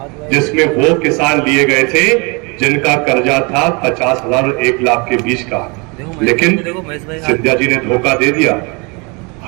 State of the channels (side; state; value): left; quieter; 30.1 dB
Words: जिसमें वो किसान लिए गए थे जिनका कर्जा था 50,000 और 1 लाख के बीच का। लेकिन सिंधिया जी ने धोखा दे दिया,